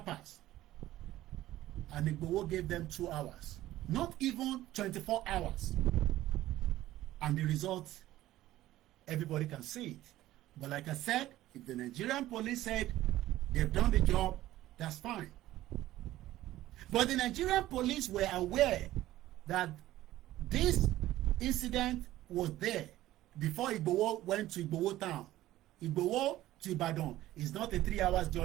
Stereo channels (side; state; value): left; quieter; 15.0 dB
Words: And Igboho gave them 2 hours. Not even 24 hours. And the result, everybody can see it. But like I said, if the Nigerian police said they've done the job, that's fine. But the Nigerian police were aware that this incident was there before Igboho went to Igboho town. Igboho to Ibadan is not a 3 hours